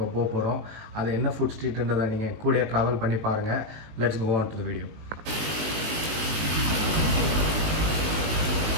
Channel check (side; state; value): left; late; 19 ms